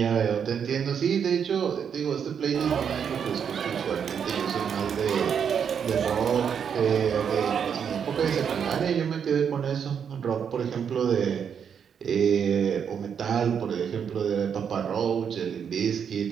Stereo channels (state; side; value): quieter; left; 7.5 dB